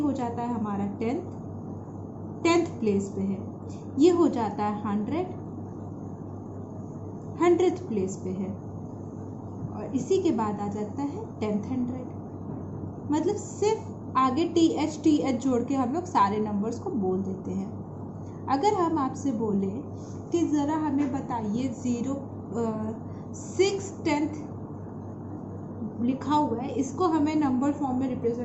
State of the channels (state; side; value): identical; both; correlation 1.00